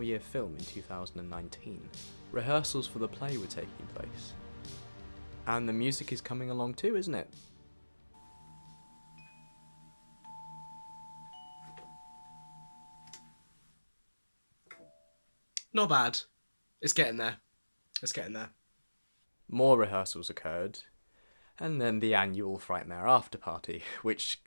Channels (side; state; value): both; inverted; correlation -1.00